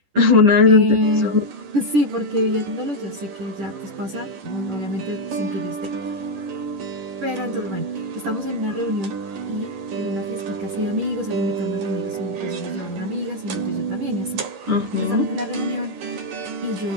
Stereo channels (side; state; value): left; late; 11 ms